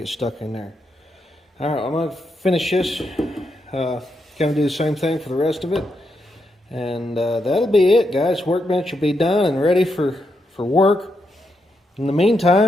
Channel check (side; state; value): both; normal; correlation 0.82